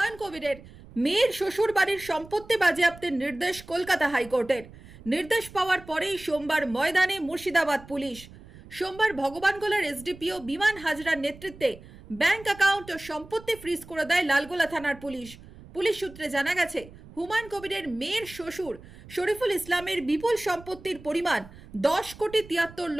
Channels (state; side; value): noise; right; rumble, 19 dB below the sound